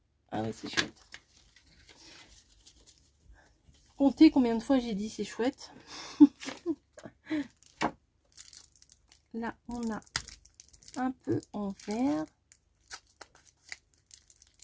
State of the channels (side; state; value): both; identical; correlation 1.00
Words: Ah ouais, c'est chouette. Comptez combien de fois j'ai dit c'est chouette. Là, on a un peu en vert.